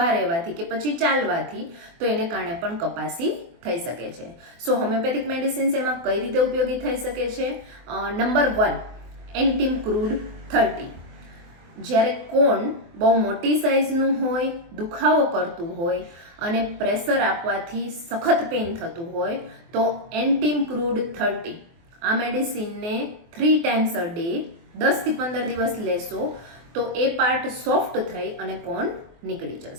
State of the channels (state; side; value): late; left; 24 ms